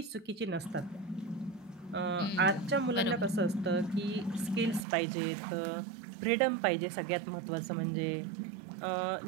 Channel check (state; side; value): drops out; left; at 4.9 s